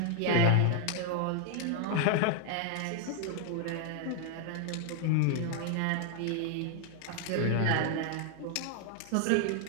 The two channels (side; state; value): both; different; correlation 0.00